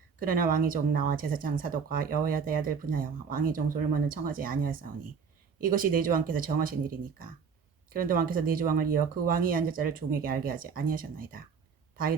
그러나 왕의 종 나와 제사장 사독과 여호야다의 아들 브나야와 왕의 종 솔로몬은 청하지 아니하였사오니 이것이 내 주 왕께서 정하신 일이니까. 그런데 왕께서 내 주 왕을 이어 그 왕이 앉을 자를 종에게 알게 하지 아니하셨나이다.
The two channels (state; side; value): quieter; left; 6.0 dB